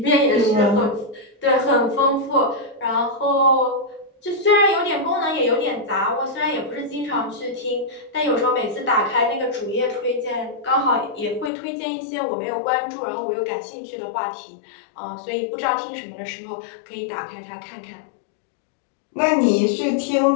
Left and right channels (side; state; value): right; drops out; at 11.5 s